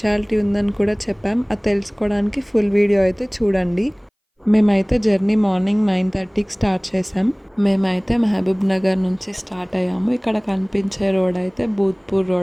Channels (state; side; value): identical; both; correlation 1.00